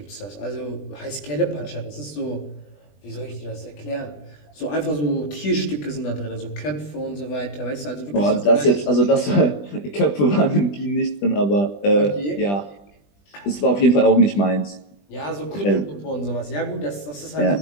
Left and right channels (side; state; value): right; late; 20 ms